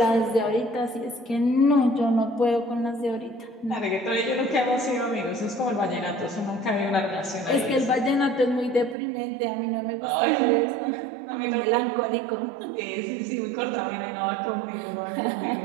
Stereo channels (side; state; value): left; drops out; at 9.0 s